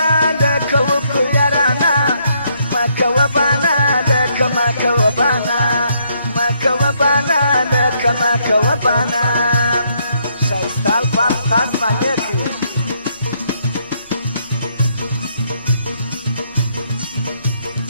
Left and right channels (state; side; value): inverted; both; correlation -0.72